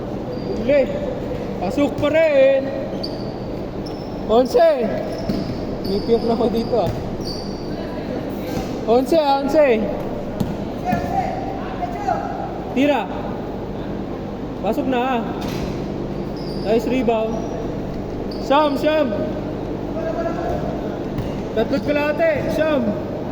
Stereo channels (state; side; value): identical; both; correlation 1.00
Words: Uli. Pasok pa rin. 11. Nipiyok na ako dito ah. 11. Tira. Pasok na ah. Nice rebound. Syam. 3 kalahati. Syam.